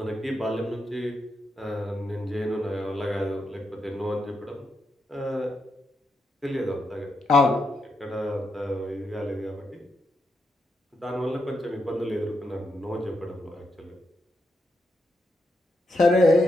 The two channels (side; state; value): both; normal; correlation 0.83